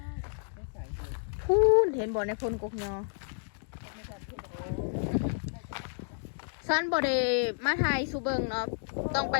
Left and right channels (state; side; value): silent; right; digital silence